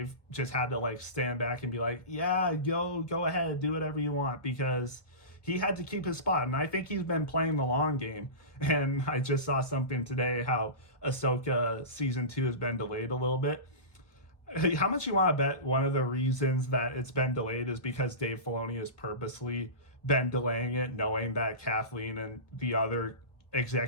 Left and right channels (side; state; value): right; late; 1.3 ms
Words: just had to stand back and be like, yeah, go ahead, do whatever you want, because he had to keep his spot. And I think he's been playing the long game. And I just saw something today how Ahsoka season 2 has been delayed a little bit. How much you want to bet one of the reasons that it's been delayed is because Dave Filoni has purposely been delaying it, knowing that Kathleen and the other